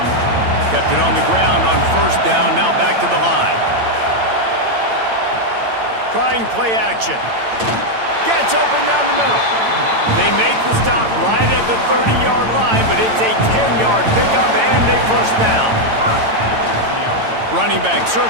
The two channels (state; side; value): late; left; 8.9 ms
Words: Kept it on the ground on first down. Now back to the line. Trying play action. Gets open down the middle. They make the stop right at the 30-yard line, but it's a 10-yard pickup and a first down. Running back